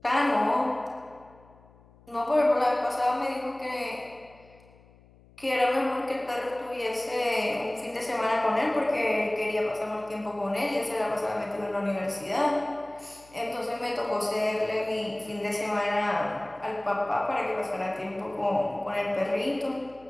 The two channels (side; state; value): left; noise; hum, 26 dB below the sound